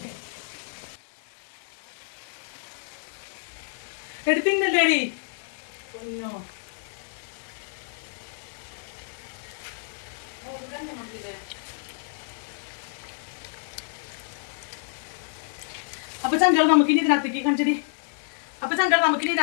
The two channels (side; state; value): right; silent; 59 dB below the other